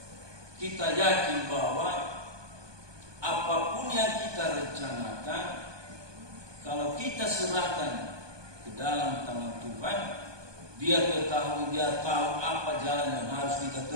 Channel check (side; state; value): left; late; 1.2 ms